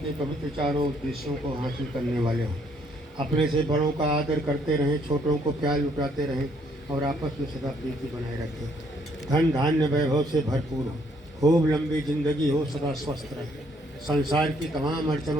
पवित्र चारों उद्देश्यों को हासिल करने वाले हों. अपने से बड़ों का आदर करते रहें, छोटों को प्यार लुटाते रहें और आपस में सदा प्रीति बनाए रखें. धन धान्य वैभव से भरपूर हो, खूब लंबी जिंदगी हो, सदा स्वस्थ रहे, संसार की तमाम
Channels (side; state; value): both; normal; correlation 0.68